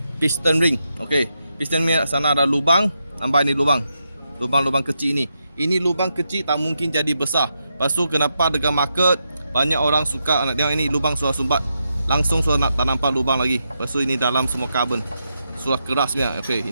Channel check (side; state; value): both; inverted; correlation -0.84